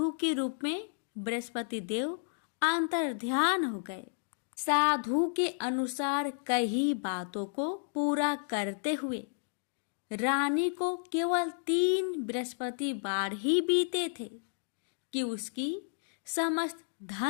के रूप में बृहस्पति देव अंतर्ध्यान हो गए। साधु के अनुसार कई बातों को पूरा करते हुए रानी को केवल 3 बृहस्पतिवार ही बीते थे कि उसकी समस्त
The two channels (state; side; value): silent; right; digital silence